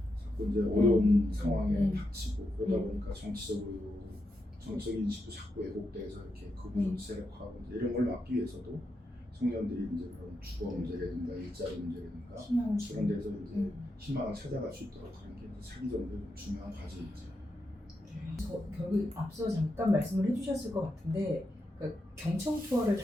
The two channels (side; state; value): both; normal; correlation 0.85